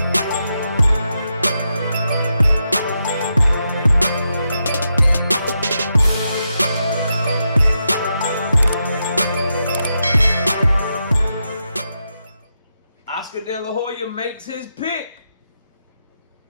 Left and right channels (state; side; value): inverted; both; correlation -0.85